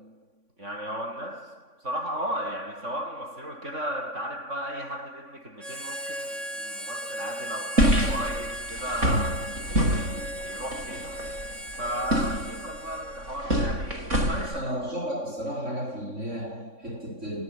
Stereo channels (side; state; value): left; late; 3.6 ms